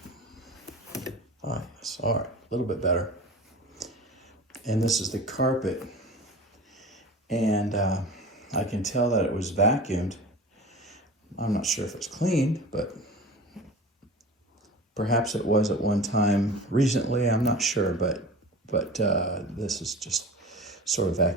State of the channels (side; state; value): both; normal; correlation 0.36